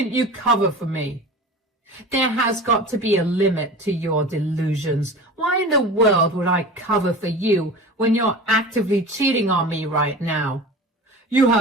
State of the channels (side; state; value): both; normal; correlation 0.35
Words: you cover for me? There has got to be a limit to your delusions. Why in the world would I cover for you when you're actively cheating on me right now? You